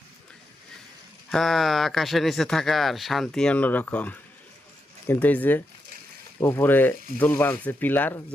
হ্যাঁ, আকাশের নিচে থাকার শান্তি অন্যরকম। কিন্তু এই যে উপরে দোল বাঁধছে পিলার,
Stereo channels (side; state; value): both; normal; correlation 0.85